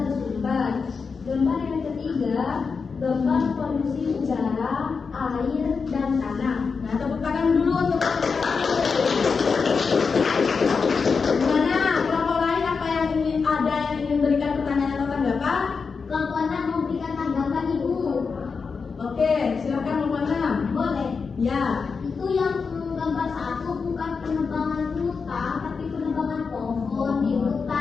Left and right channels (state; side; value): quieter; right; 5.2 dB